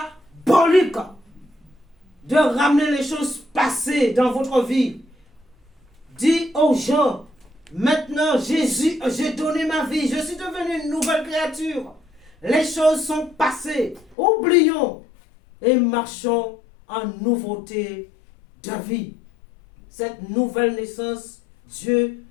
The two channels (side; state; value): right; drops out; at 14.2 s